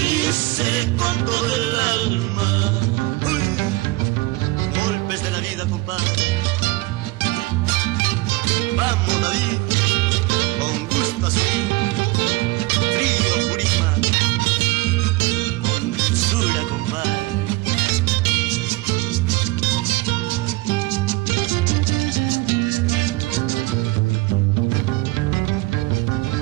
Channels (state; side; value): quieter; left; 21.1 dB